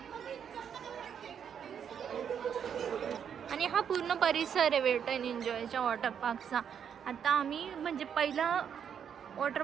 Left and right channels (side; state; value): left; quieter; 8.0 dB